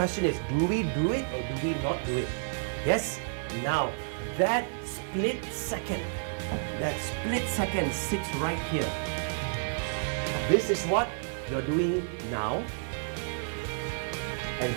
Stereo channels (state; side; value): silent; left; digital silence